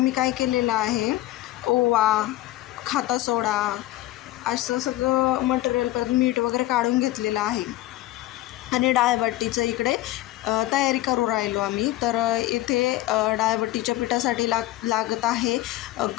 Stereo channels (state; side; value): quieter; right; 16.1 dB